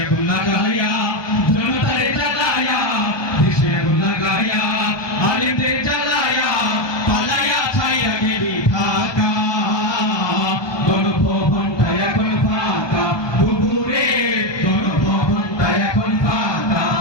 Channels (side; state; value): right; late; 1.2 ms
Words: আগুন লাগায়া জনতার জ্বালায়া দেশে আগুন লাগায়া আলেমদের জ্বালায়া পালায়া ছাইরা গেলি ঢাকা গণভবনটা এখন ফাঁকা বুবুরে গণভবনটা এখন ফাঁকা